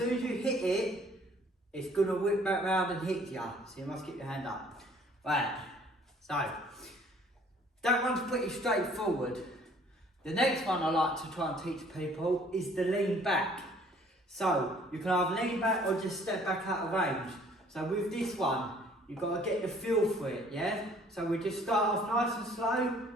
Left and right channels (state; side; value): normal; both; correlation 0.57